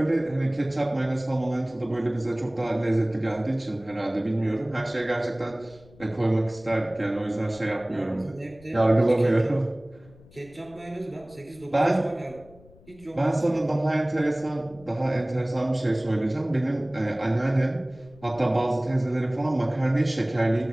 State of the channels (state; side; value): noise; left; rumble, 24 dB below the sound